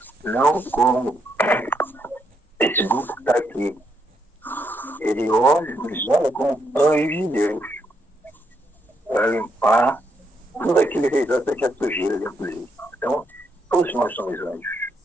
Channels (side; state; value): both; normal; correlation 0.77